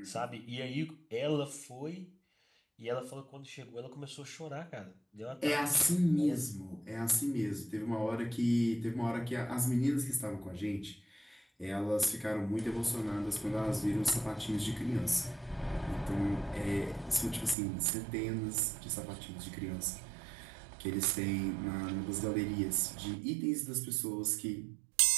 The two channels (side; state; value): left; drops out; at 17.6 s